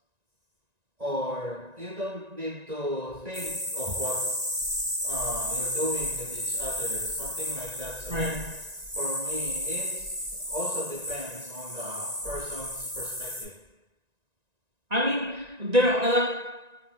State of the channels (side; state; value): left; late; 1.9 ms